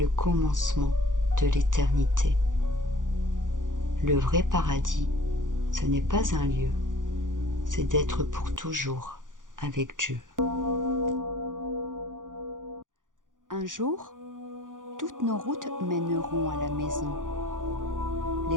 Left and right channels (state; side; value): late; left; 0.88 ms